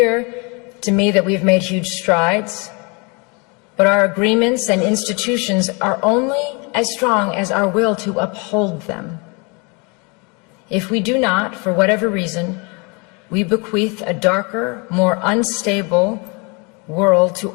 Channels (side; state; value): right; quieter; 30.8 dB